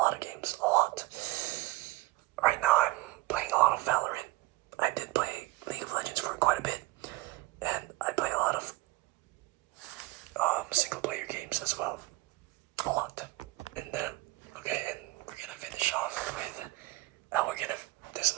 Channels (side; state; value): left; quieter; 19.9 dB